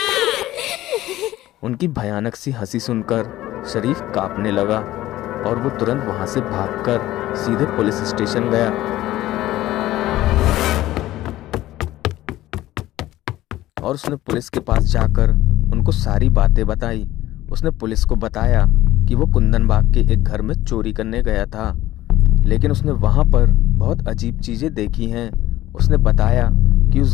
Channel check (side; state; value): right; quieter; 15.4 dB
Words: उनकी भयानक सी हंसी सुनकर शरीफ कांपने लगा और वो तुरंत वहां से भागकर सीधे पुलिस स्टेशन गया। और उसने पुलिस के पास जाकर उनको सारी बातें बताई। उसने पुलिस को बताया कि वो कुंदन बाग के एक घर में चोरी करने गया था, लेकिन उसने वहां पर बहुत अजीब चीजें देखी हैं। उसने बताया कि उस